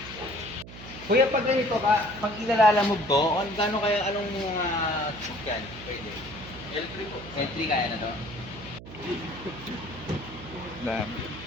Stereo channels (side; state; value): right; noise; hum, 14 dB below the sound